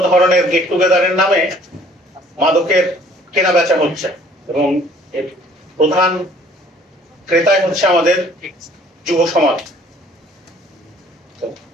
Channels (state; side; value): normal; both; correlation 0.56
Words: ধরনের গেট টুগেদারের নামে মাদকের কেনা বেচা হচ্ছে এবং প্রধান ক্রেতাই হচ্ছে আমাদের যুব সমাজ।